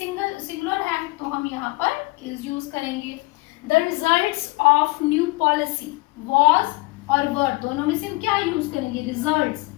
है तो हम यहाँ पर इज यूज करेंगे. The results of new policy. Was और वर दोनों में से हम क्या यूज करेंगे? रिजल्ट्स.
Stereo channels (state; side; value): quieter; right; 22.9 dB